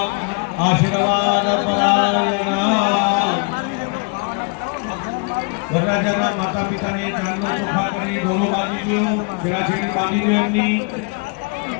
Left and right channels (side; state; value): right; quieter; 33.6 dB